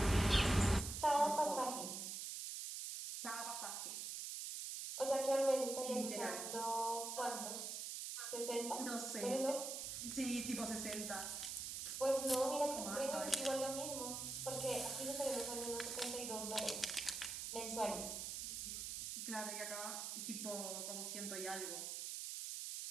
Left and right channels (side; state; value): right; noise; hiss, 4 dB below the sound